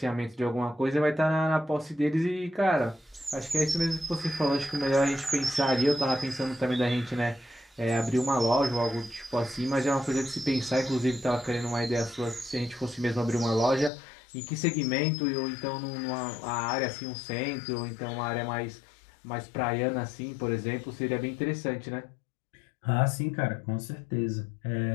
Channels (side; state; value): right; drops out; at 13.9 s